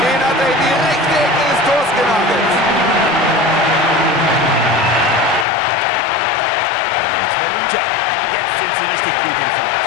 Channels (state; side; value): drops out; right; at 5.5 s